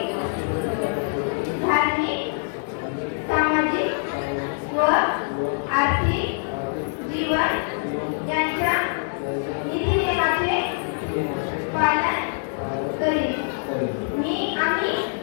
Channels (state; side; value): silent; right; 62 dB below the other